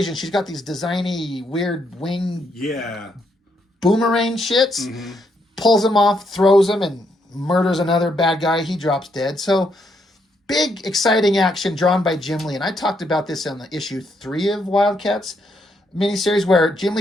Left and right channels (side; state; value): both; normal; correlation 0.76